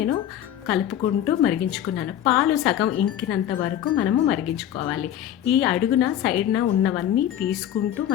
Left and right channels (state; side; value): quieter; right; 11.1 dB